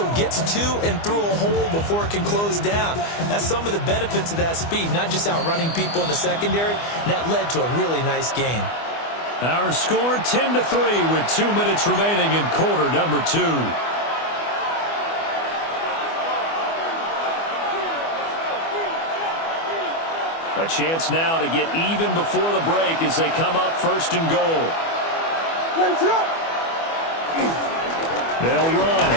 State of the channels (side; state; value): right; late; 24 ms